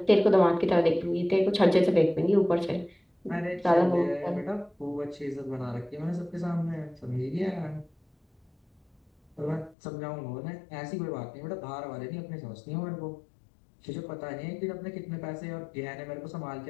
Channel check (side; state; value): right; drops out; at 9.8 s